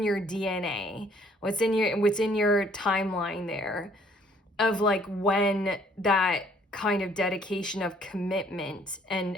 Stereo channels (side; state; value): both; normal; correlation 0.61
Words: your DNA, what's in your timeline there of like when that kind of dedication of commitment